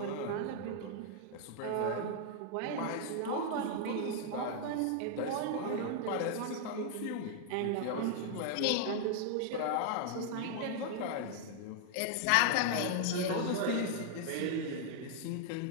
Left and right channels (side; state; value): both; different; correlation 0.00